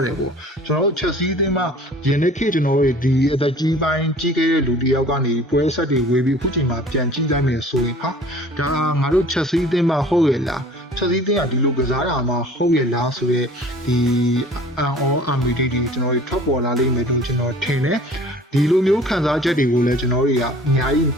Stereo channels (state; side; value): normal; both; correlation 0.47